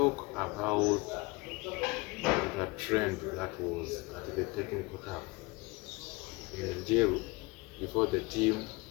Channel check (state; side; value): quieter; right; 25.3 dB